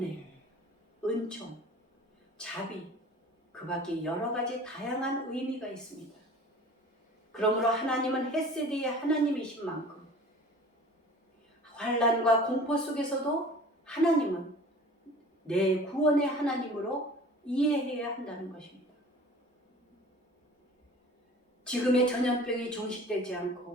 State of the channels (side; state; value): both; normal; correlation 0.44